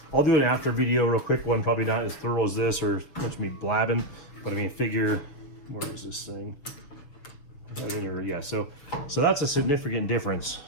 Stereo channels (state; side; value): late; right; 6.7 ms